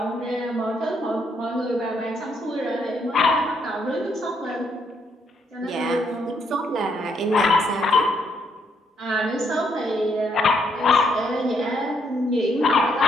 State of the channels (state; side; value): normal; both; correlation 0.73